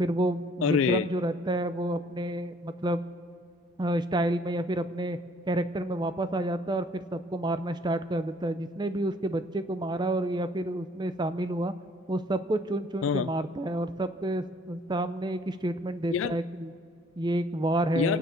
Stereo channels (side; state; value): both; normal; correlation 0.59